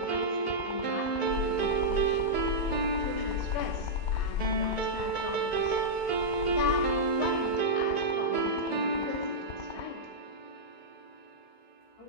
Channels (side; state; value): right; late; 16 ms